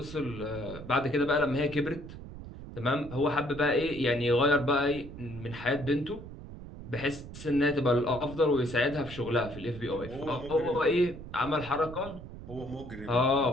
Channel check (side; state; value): right; noise; rumble, 13 dB below the sound